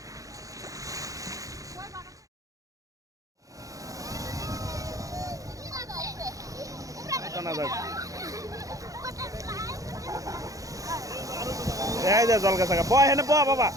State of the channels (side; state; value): left; late; 0.16 ms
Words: এই যে জল গাছা বয় হেনে বয় বাবা